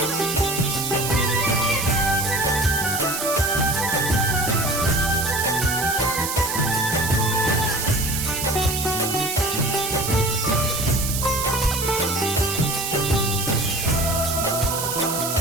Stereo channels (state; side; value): noise; right; hiss, 3 dB below the sound